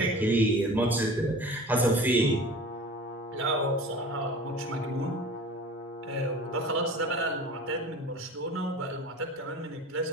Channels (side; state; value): both; normal; correlation 0.40